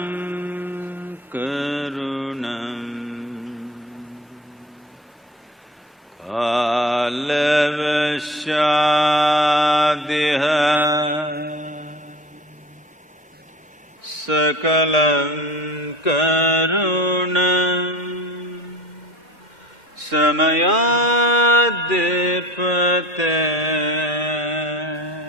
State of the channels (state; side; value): normal; both; correlation 0.40